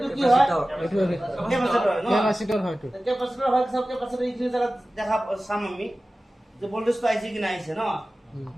কি হয়? ক্যাপাসিটর হয়, ক্যাপাসিটর হয়। তো ক্যাপাসিটর হয়, সব ক্যাপাসিটর এইখিনি জায়গা দেখা চাম আমি যে ভোল্টেজ তো আইছে কি না আইছে না।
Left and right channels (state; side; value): normal; both; correlation 0.96